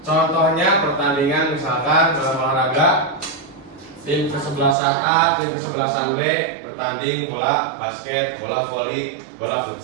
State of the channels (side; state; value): left; drops out; at 4.8 s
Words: Contohnya pertandingan misalkan dalam olahraga, tim kesebelasan A, tim kesebelasan B bertanding bola basket, bola voli, bola